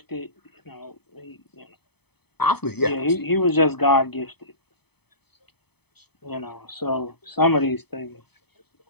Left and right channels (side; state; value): right; late; 0.97 ms